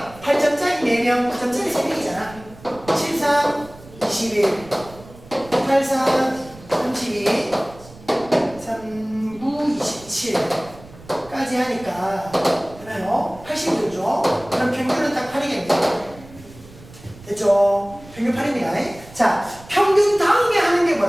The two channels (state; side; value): noise; right; rumble, 20 dB below the sound